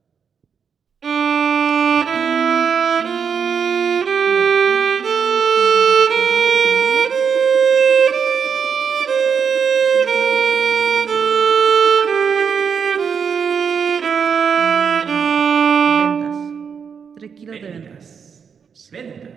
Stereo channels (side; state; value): left; quieter; 6.7 dB